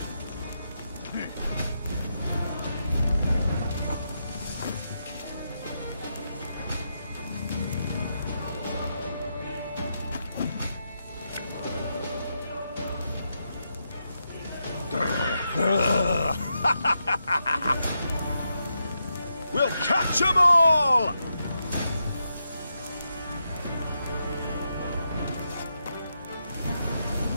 We'll catch 'em all!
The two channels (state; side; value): inverted; both; correlation -0.84